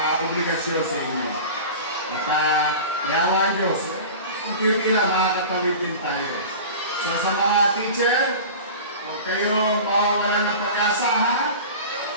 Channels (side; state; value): both; inverted; correlation -0.35